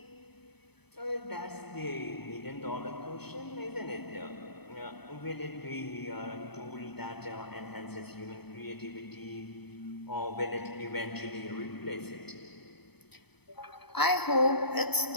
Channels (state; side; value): late; right; 0.98 ms